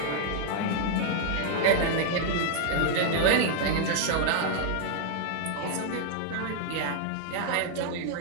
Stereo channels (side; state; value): both; different; correlation 0.00